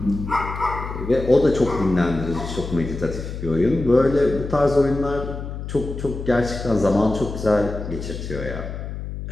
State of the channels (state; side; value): noise; left; hum, 7 dB below the sound